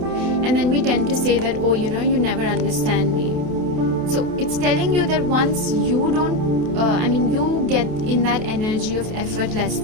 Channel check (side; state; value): left; late; 28 ms